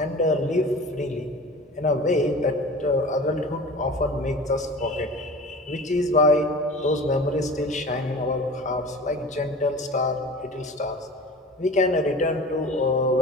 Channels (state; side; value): normal; both; correlation 0.38